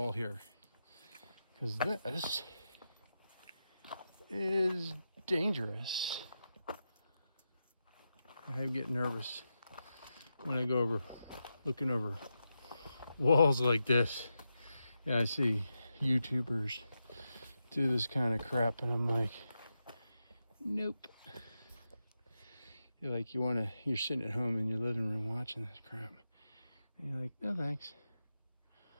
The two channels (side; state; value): both; inverted; correlation -0.88